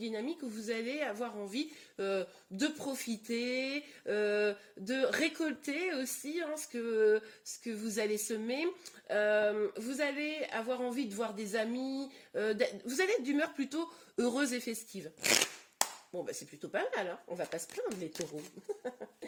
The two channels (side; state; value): both; identical; correlation 1.00